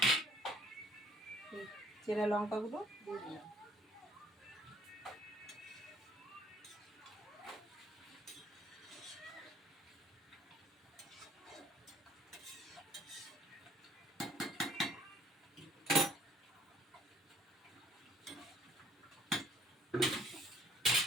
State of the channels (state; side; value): normal; both; correlation 0.60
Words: চেরা লঙ্কাগুলো দিয়ে দিলাম।